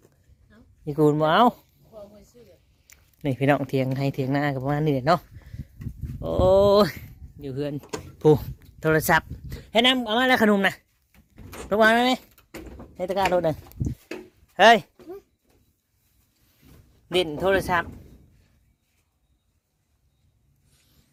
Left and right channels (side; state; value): both; identical; correlation 1.00